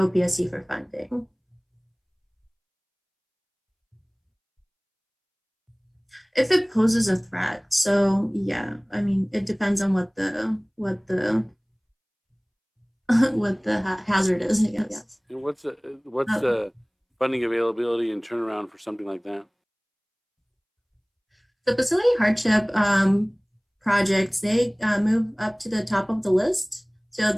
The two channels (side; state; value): both; identical; correlation 1.00